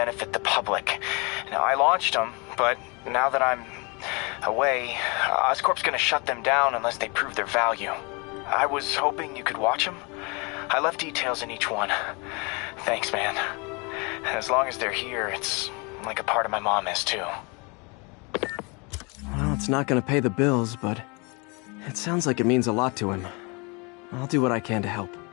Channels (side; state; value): right; quieter; 30.3 dB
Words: the public. Now, I launched them, but now that I'm away, Oscorp's gonna shut them down unless they prove their value. I was hoping you could watch them. I left details in each one. Thanks, man. As long as they're here, it's like a part of my mom is, too. Well, it's not gonna pay the bills, but it sounds like it means a lot to him. I'll do what I can to help.